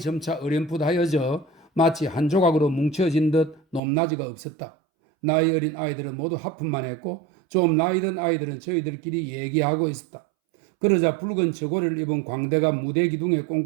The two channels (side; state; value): left; drops out; at 3.8 s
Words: 점차 어렴풋하여져 마치 한 조각으로 뭉쳐진 듯 높낮이가 없었다. 나이 어린 아이들은 모두 하품만 했고 좀 나이 든 아이들은 저희들끼리 얘기하고 있었다. 그러자 붉은 저고리를 입은 광대가 무대 기둥에